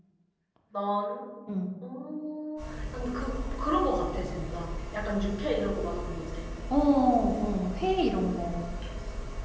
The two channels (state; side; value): identical; both; correlation 1.00